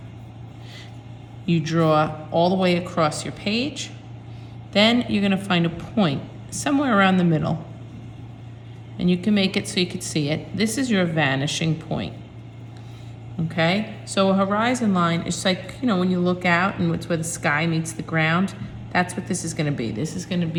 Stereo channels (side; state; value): both; identical; correlation 1.00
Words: you draw all the way across your page. Then you're going to find a point somewhere around the middle. And you can make it so you can see it. This is your vanishing point. Okay? So a horizon line is like, you know, when you look out and it's where the sky meets the ground. That's what this is going to be. This is going to